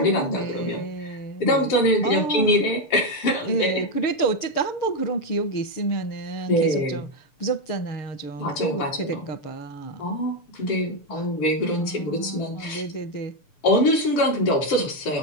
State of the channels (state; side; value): late; right; 6.8 ms